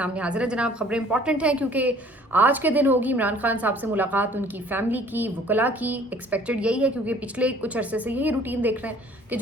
हाजिर है। जनाब, खबरें इंपॉर्टेंट हैं क्योंकि आज के दिन होगी इमरान खान साहब से मुलाकात, उनकी फैमिली की, वकला की। एक्सपेक्टेड यही है क्योंकि पिछले कुछ अरसे से यही रूटीन देख रहे हैं कि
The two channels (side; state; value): both; normal; correlation 0.54